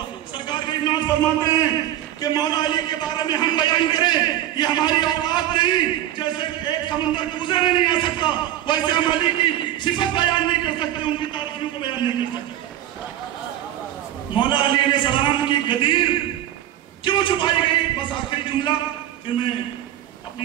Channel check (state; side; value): quieter; left; 12.5 dB